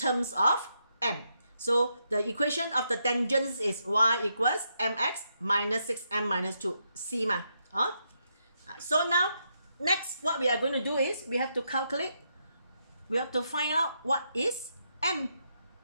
of m. So the equation of the tangents is y equals mx minus 6m minus 2, c ma. So now, next what we are going to do is, we have to calculate, we have to find out what is m.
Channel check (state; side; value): inverted; both; correlation -0.80